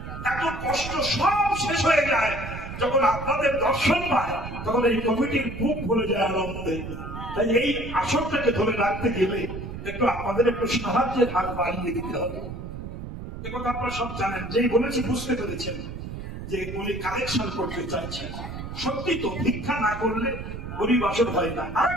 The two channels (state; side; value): noise; right; rumble, 9 dB below the sound